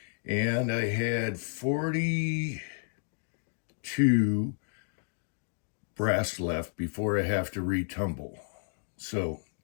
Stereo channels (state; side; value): silent; right; 57 dB below the other